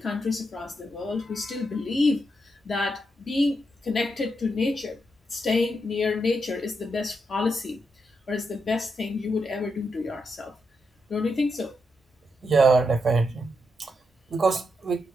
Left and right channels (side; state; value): both; normal; correlation 0.83